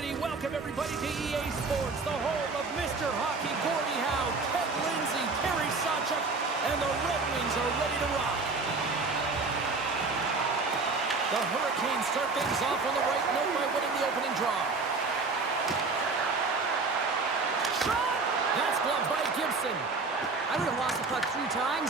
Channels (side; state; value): left; quieter; 4.0 dB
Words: Welcome, everybody, to EA Sports, the home of Mr. Hockey, Gordie Howe, Ted Lindsay, Terry Sawchuk, and the Red Wings are ready to rock. The Hurricanes start things off on the right note by winning the opening draw. Shot! That's blocked by Gibson. I would have lost the puck 3 times